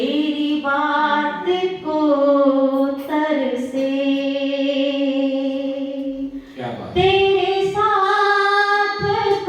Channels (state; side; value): identical; both; correlation 1.00